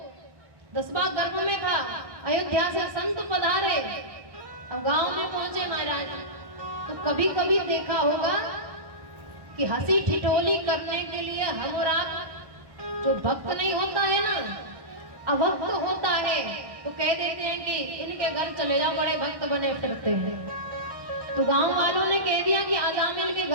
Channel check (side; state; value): left; late; 1.1 ms